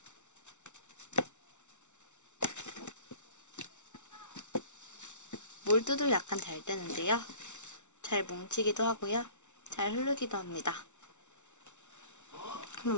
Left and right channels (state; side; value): late; right; 0.83 ms